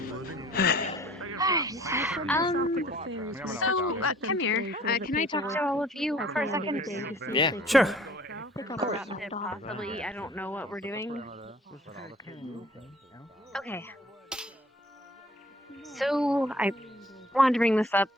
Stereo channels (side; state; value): both; normal; correlation 0.53